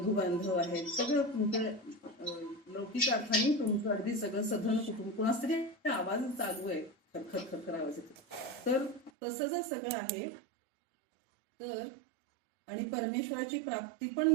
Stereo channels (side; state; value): left; drops out; at 9.1 s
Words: बांधव आहेत, सगळं तुमचं लौकिक अर्थाने तुमचं अगदी सगळं सधन कुटुंब. कुणाच तरी आवाज चालू आहे, खरखर खरखर आवाज येतो. तर तसं जर सगळं आहे तर, आणि परमेश्वराची प्राप्ती